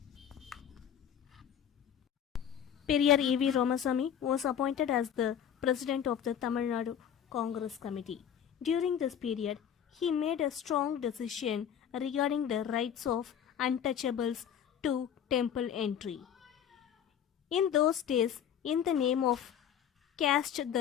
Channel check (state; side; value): quieter; right; 9.0 dB